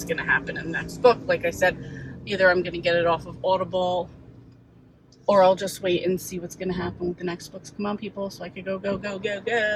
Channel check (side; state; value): both; identical; correlation 1.00